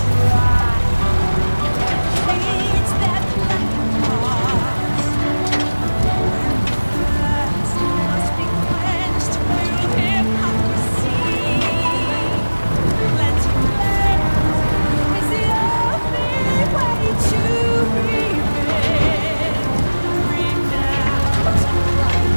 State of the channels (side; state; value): both; inverted; correlation -1.00